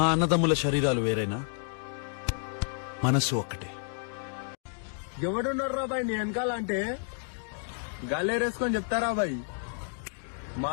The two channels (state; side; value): silent; right; 58 dB below the other